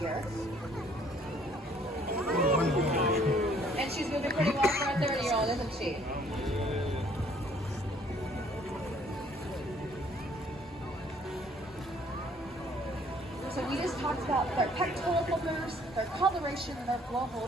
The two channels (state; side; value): normal; both; correlation 0.60